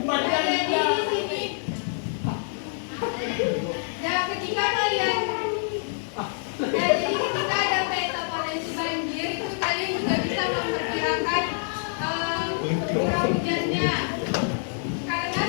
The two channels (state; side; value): silent; right; 61 dB below the other